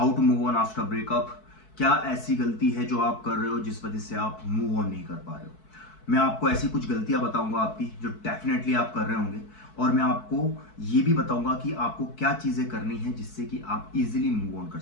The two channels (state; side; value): late; right; 4.6 ms